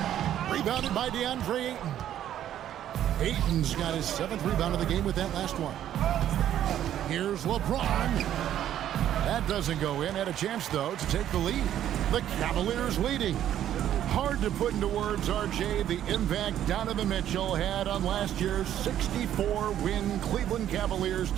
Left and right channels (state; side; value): quieter; left; 11.2 dB